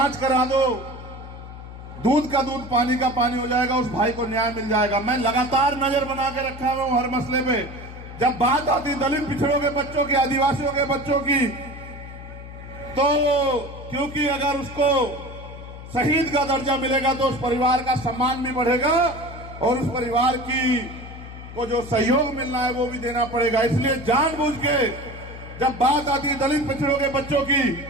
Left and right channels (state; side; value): noise; left; hum, 13 dB below the sound